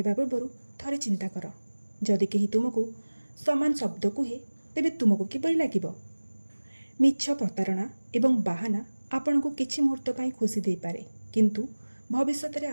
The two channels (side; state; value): both; inverted; correlation -1.00